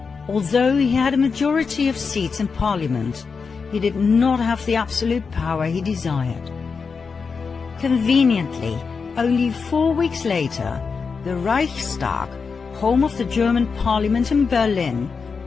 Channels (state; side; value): quieter; right; 5.2 dB